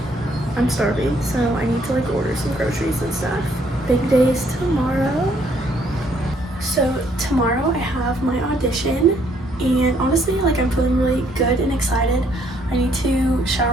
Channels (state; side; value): normal; both; correlation 0.67